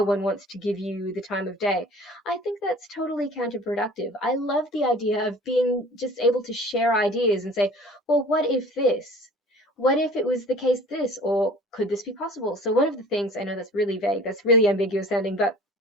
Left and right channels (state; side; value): normal; both; correlation 0.45